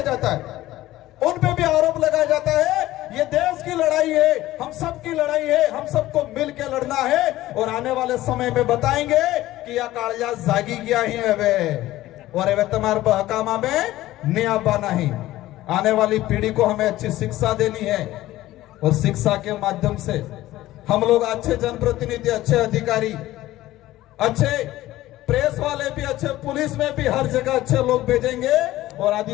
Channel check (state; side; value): quieter; right; 15.9 dB